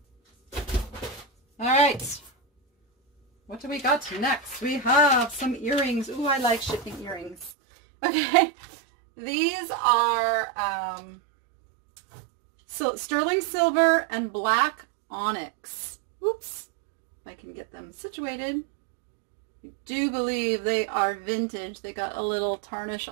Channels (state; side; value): drops out; left; at 7.5 s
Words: All right. What do we got next? We have some earrings. Ooh, I like shipping earrings. Okay. These are sterling silver and black onyx. Oops. If I can get them situated. I do believe they are vintage. They got a little tarnish